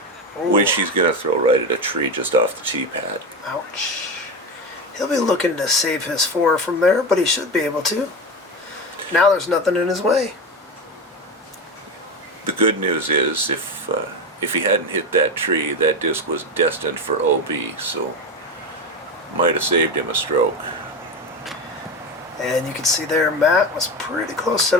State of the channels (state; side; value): normal; both; correlation 0.20